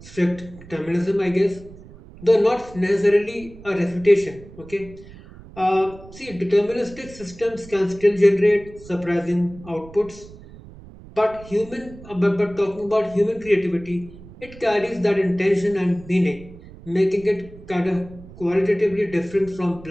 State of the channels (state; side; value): noise; right; rumble, 19 dB below the sound